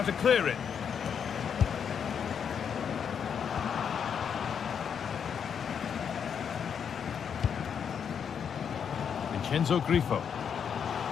to clear it. Vincenzo Grifo.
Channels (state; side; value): quieter; right; 7.4 dB